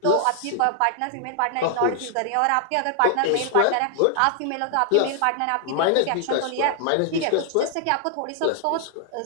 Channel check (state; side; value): different; both; correlation 0.00